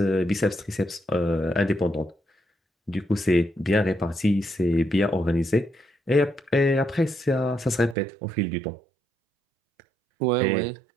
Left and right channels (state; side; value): drops out; left; at 8.0 s